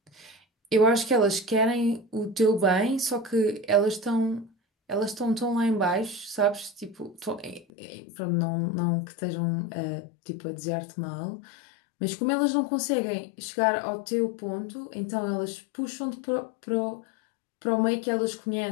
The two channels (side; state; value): right; drops out; at 7.7 s